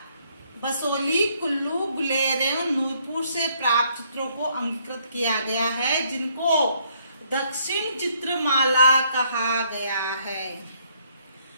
बसोली, कुल्लू, गुलेर एवं नूरपुर से प्राप्त चित्रों को अंगीकृत किया गया है, जिनको दक्षिण चित्रमाला कहा गया है।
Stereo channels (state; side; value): inverted; both; correlation -0.68